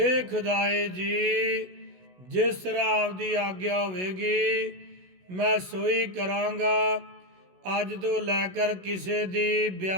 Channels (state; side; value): late; left; 16 ms